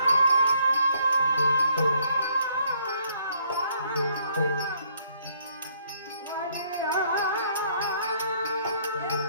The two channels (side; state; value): both; inverted; correlation -0.67